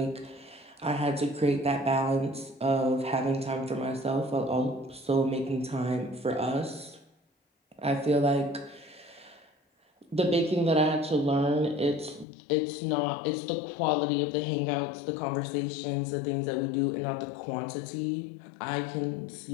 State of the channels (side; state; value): right; drops out; at 12.2 s